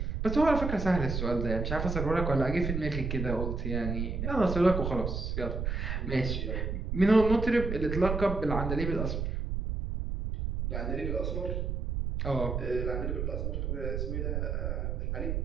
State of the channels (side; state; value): right; noise; rumble, 2 dB below the sound